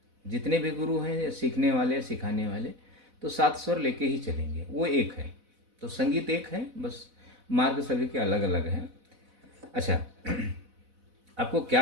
जितने भी गुरु हैं सीखने वाले, सिखाने वाले, तो 7 स्वर लेके ही चलेंगे, वो एक है। तो संगीत एक है, बस मार्ग सभी के अलग अलग हैं। अच्छा, आपको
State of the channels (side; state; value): left; late; 4.0 ms